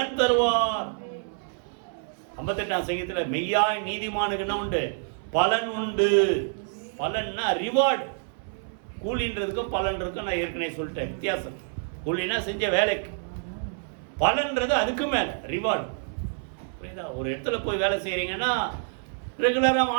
தருவார். 58ஆம் சங்கீதத்தில் மெய்யாய் நீதிமானுக்கு என்ன உண்டு? பலன் உண்டு. பலன்னா ரிவார்டு. கூலின்றதுக்கும் பலன்றதுக்கும் நான் ஏற்கனவே சொல்லிட்டேன் வித்தியாசம். கூலினா செஞ்ச வேலைக்கு, பலன்றது அதுக்கு மேலே ரிவார்டு. புரியுதா? ஒரு இடத்துல போய் வேலை செய்கிறீங்கன்னா ரெகுலராக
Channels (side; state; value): left; silent; 60 dB below the other